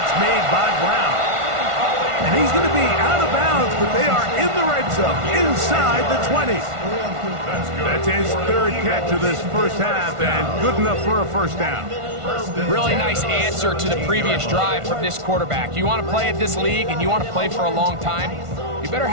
made by Brown. And he's going to be out of bounds, but they are in the red zone, inside the 20. That's his third catch of this first half, and good enough for a first down. Really nice answer to the previous drive from this quarterback. You want to play at this league and you want to play for a long time, you better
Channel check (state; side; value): late; left; 1.5 ms